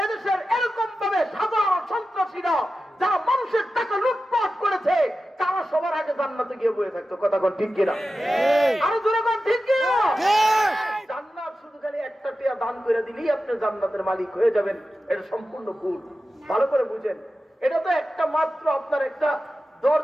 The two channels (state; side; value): normal; both; correlation 0.93